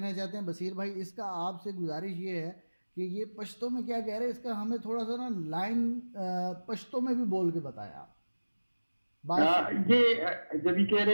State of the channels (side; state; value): both; inverted; correlation -1.00